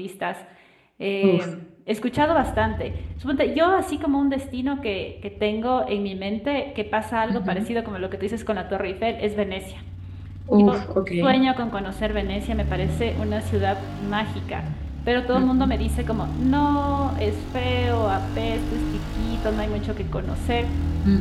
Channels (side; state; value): both; identical; correlation 1.00